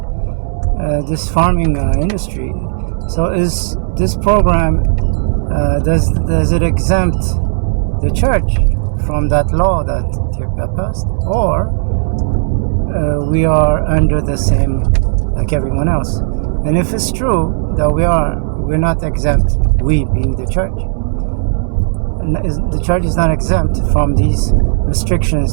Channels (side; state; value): left; silent; digital silence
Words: this farming industry. So is this program, does it exempt the church from that law that Ethiopia passed, or we are under the same like everyone else? And if it's true that we're not exempt, we being the church, the church is not exempt from these